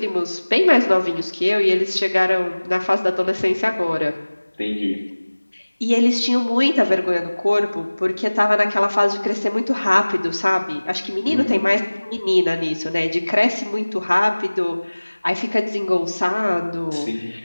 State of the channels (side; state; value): both; inverted; correlation -1.00